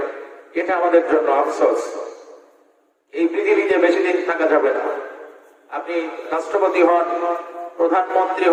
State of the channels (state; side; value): identical; both; correlation 1.00